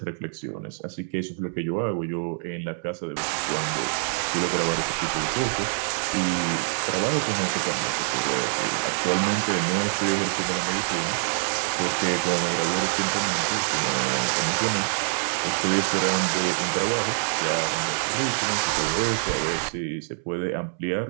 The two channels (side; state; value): left; silent; 61 dB below the other